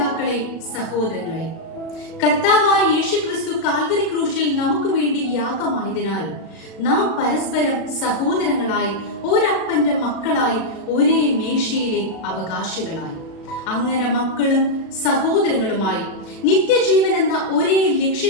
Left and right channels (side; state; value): right; late; 36 ms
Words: സഹോദരങ്ങളെ, കർത്താവായ യേശുക്രിസ്തു കാൽവരി ക്രൂശിൽ നമുക്ക് വേണ്ടി യാഗമായതിനാൽ നാം പരസ്പരം സഹോദരങ്ങളായി, ഒരപ്പന്റെ മക്കളായി, ഒരേ മേശയിലെ അവകാശികളായി, അങ്ങനെ മക്കളും സഹോദരങ്ങളുമായി നിത്യജീവൻ എന്ന ഒരേ